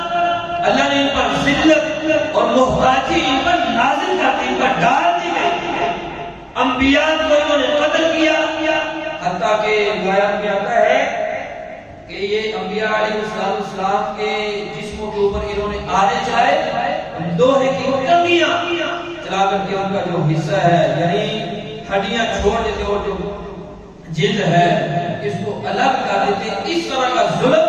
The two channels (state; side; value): identical; both; correlation 1.00